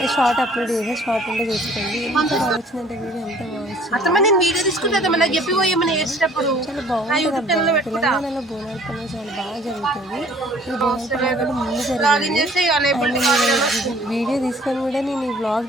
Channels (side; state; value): both; normal; correlation 0.54